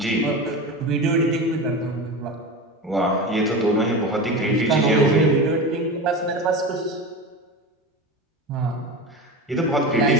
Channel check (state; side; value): normal; both; correlation 0.27